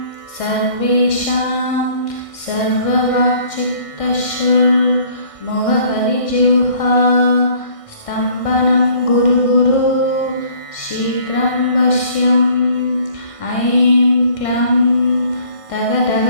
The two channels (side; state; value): right; late; 1.6 ms